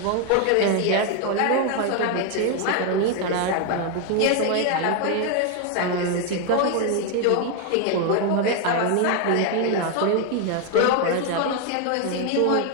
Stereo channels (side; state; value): both; different; correlation 0.01